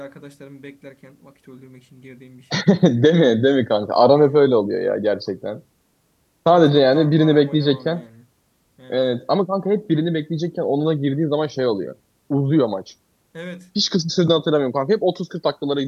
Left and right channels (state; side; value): identical; both; correlation 1.00